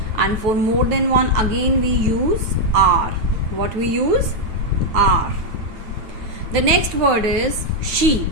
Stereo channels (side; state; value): left; late; 9.3 ms